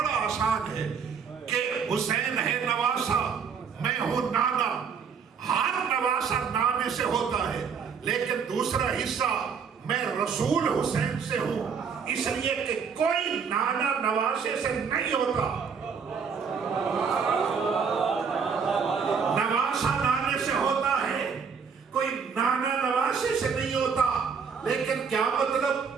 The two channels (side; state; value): left; quieter; 6.2 dB